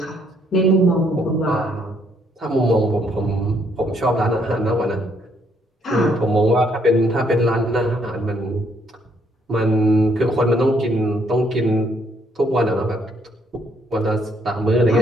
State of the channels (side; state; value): both; normal; correlation 0.70